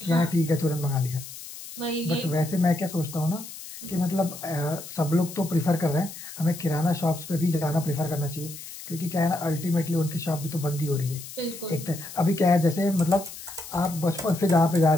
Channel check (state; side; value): noise; left; hiss, 13 dB below the sound